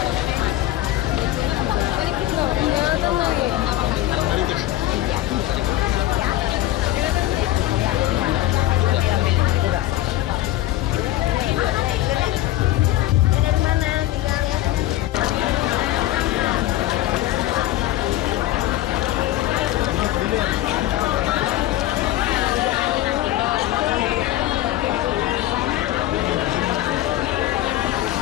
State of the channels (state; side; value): quieter; right; 15.0 dB